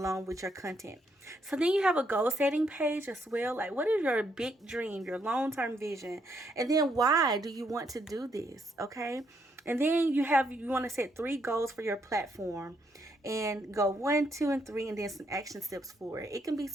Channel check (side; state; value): both; normal; correlation 0.74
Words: with your content. So then you have a goal setting page as well. Like, what is your big dream, your long-term vision? And then why do you want to do this? Okay. And then you want to set 3 goals for your platform, and go 1, 2, and 3, and then some action steps for it. It can be